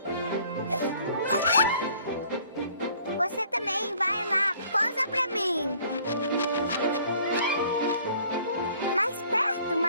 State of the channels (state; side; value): inverted; both; correlation -0.57